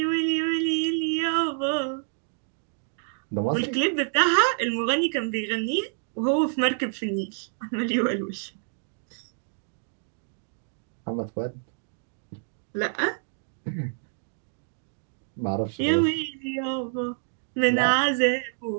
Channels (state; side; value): silent; left; digital silence